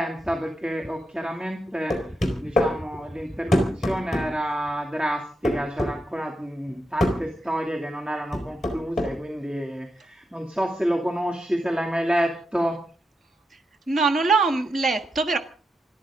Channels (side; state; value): both; normal; correlation 0.85